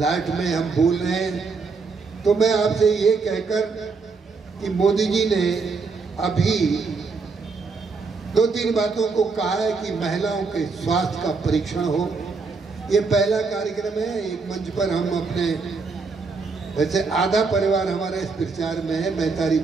में हम बोल रहे हैं, तो मैं आपसे ये कहकर कि मोदी जी ने अभी 2-3 बातों को कहा है कि महिलाओं के स्वास्थ्य का परीक्षण हो। ये पहला कार्यक्रम है, एक मंच पर हम अपने, वैसे आधा परिवार हमारा इस प्रचार में है महतारी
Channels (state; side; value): quieter; left; 4.5 dB